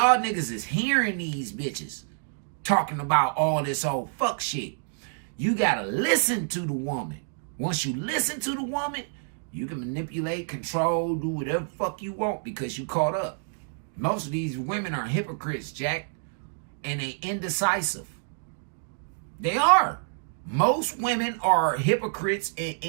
niggas is hearing these bitches talking about all this old fuck shit. You gotta listen to the woman. Once you listen to the woman, you can manipulate, control, do whatever fuck you want because you caught up. Most of these women are hypocrites, Jack, and they indecisive. They are. Most women are hypocrites and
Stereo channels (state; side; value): silent; left; digital silence